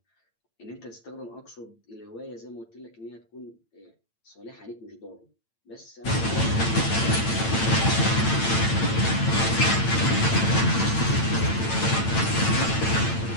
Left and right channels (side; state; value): right; late; 8.9 ms